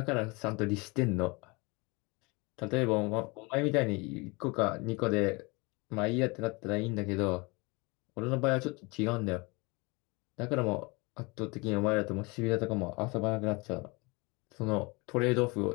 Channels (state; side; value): quieter; right; 27.0 dB